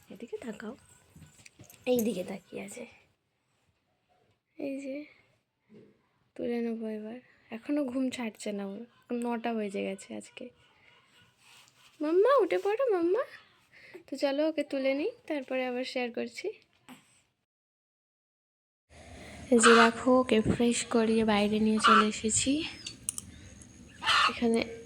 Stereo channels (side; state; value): both; identical; correlation 1.00